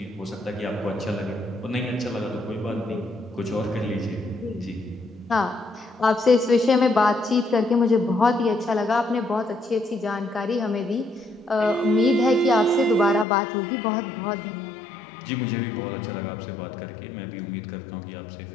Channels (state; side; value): drops out; right; at 13.2 s